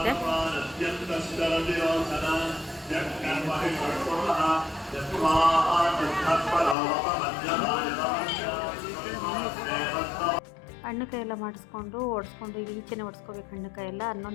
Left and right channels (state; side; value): drops out; right; at 6.8 s